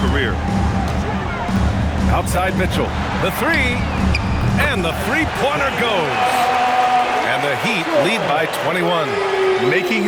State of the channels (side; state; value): both; identical; correlation 1.00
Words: career. Outside Mitchell, the three, and the three-pointer goes. And the Heat lead by 21. Making